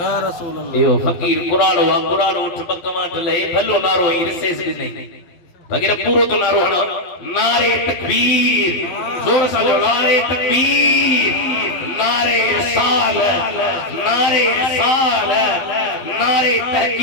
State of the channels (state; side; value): late; right; 12 ms